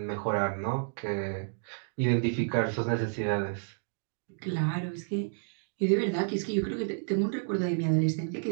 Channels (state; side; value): silent; left; digital silence